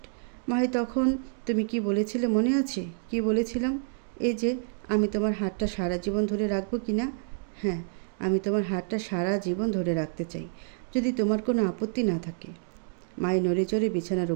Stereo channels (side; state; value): left; silent; 59 dB below the other